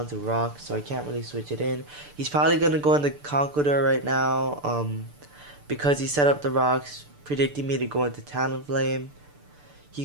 to rock, so I can't really switch it in. He's probably gonna go into Conqueror right now, because he set up the rocks, predicting me to go into Talonflame. He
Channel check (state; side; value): late; left; 6.8 ms